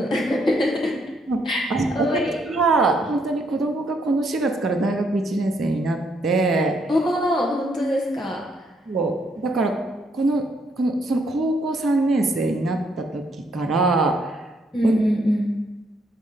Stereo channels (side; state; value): both; normal; correlation 0.73